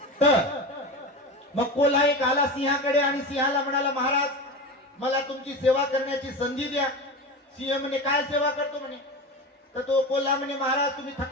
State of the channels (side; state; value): both; normal; correlation 0.26